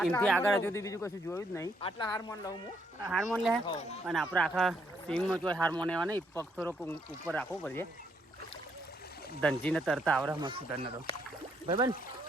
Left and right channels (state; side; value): normal; both; correlation 0.73